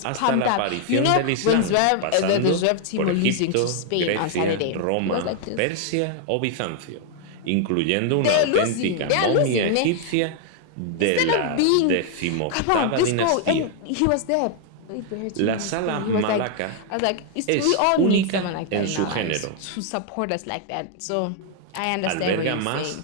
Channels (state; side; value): different; both; correlation 0.00